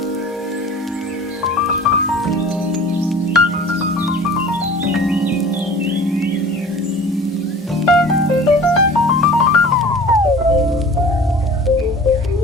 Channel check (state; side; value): normal; both; correlation 0.43